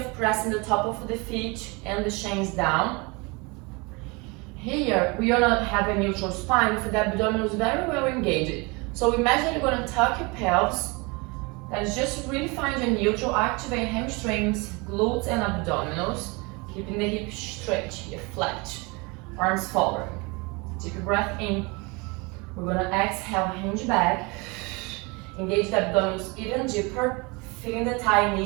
pressing the top of the feet and the shins down. Here, we are gonna have a neutral spine for the abdominals very well engaged. So imagine you're gonna tuck your pelvis. That is just really find your neutral, activate hamstrings, glutes and abdominals, keeping the hips straight, here, flat, arms forward. Take a breath in. We're gonna exhale, hinge back, engage the abdominals even deeper, feeling the thigh knee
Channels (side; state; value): left; quieter; 27.6 dB